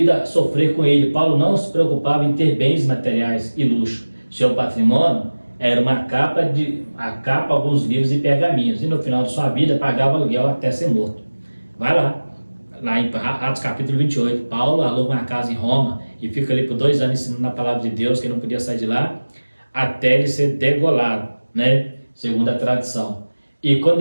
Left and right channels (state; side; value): inverted; both; correlation -1.00